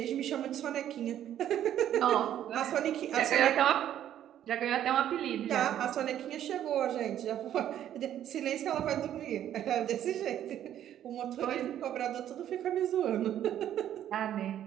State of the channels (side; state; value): left; quieter; 11.0 dB